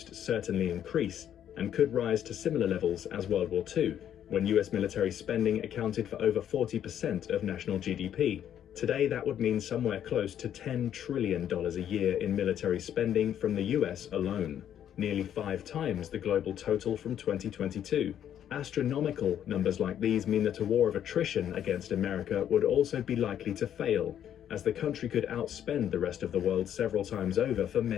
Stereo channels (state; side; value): quieter; right; 10.0 dB